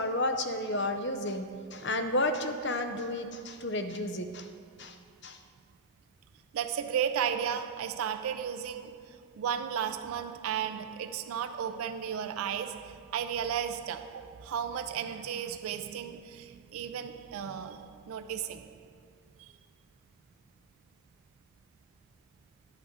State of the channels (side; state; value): left; quieter; 3.4 dB